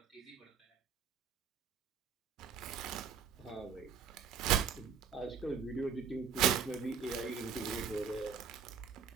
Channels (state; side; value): quieter; left; 6.8 dB